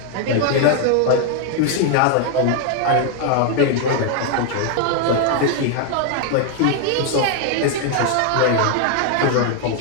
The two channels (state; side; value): different; both; correlation 0.00